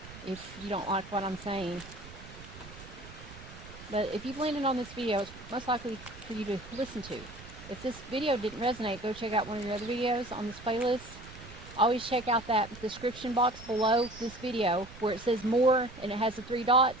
if you don't like what I'm saying. But if you've landed on this video, it's most likely for you to listen to. If this video didn't resonate, go check out one of your other videos on this playlist. Always check out that description box below this video where it says more and it has the 3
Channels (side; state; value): right; noise; rumble, 16 dB below the sound